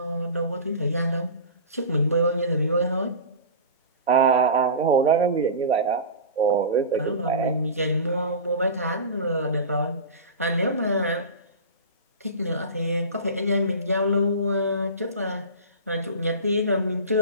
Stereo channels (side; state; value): both; inverted; correlation -0.31